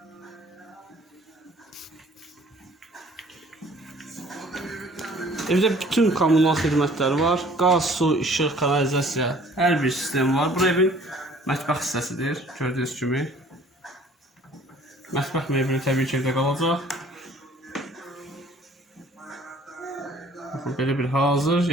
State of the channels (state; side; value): normal; both; correlation 0.54